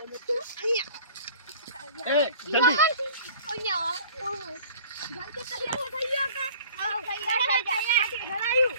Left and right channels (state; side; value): inverted; both; correlation -0.47